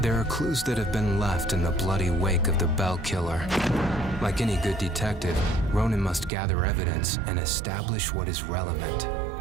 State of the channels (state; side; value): drops out; left; at 6.3 s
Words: are clues that have been left in the bloody wake of the Bell Killer. Like any good detective, Ronan must gather evidence and establish what is relevant.